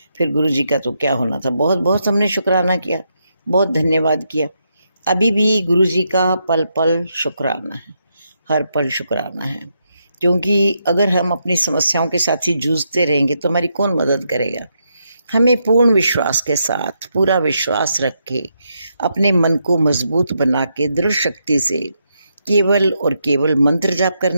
फिर गुरु जी का तो क्या होना था, बहुत बहुत हमने शुक्राना किया, बहुत धन्यवाद किया। अभी भी गुरु जी का पल पल शुक्राना है, हर पल शुक्राना है, क्योंकि अगर हम अपनी समस्याओं के साथ ही जूझते रहेंगे तो हमारी कौन मदद करेगा। हमें पूर्ण विश्वास के साथ, पूरा विश्वास रख के, अपने मन को मजबूत बना के दृढ़ शक्ति से केवल और केवल मंत्र जाप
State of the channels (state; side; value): inverted; both; correlation -0.81